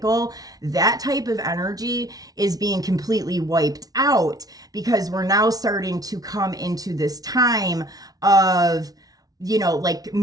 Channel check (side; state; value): left; late; 0.18 ms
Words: That type of energy is being completely wiped out because we're now starting to come into this time of like